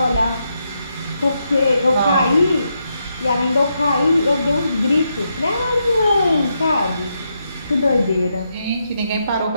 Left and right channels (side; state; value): both; inverted; correlation -0.82